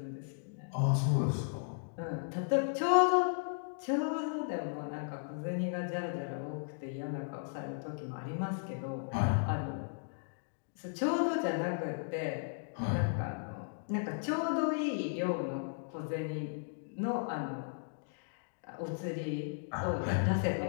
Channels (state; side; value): silent; right; digital silence